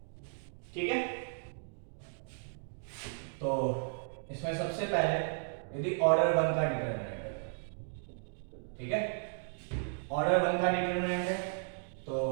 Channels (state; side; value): silent; left; digital silence